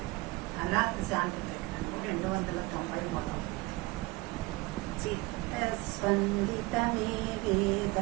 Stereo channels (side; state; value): left; quieter; 22.6 dB